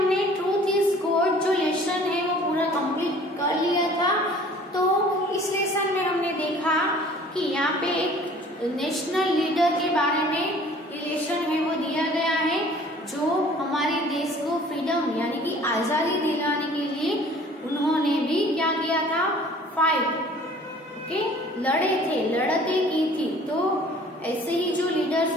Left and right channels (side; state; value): both; normal; correlation 0.51